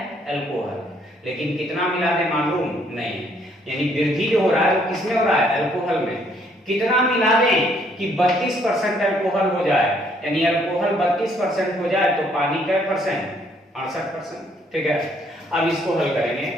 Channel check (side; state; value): both; normal; correlation 0.67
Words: अल्कोहल, लेकिन कितना मिला दें मालूम नहीं, यानी वृद्धि जो हो रहा है वो किसमें हो रहा है? अल्कोहल में। कितना मिला दें कि 32% अल्कोहल हो जाए, यानी अल्कोहल 32% हो जाए तो पानी क्या %? 68%। ठीक है, अब इसको हल करेंगे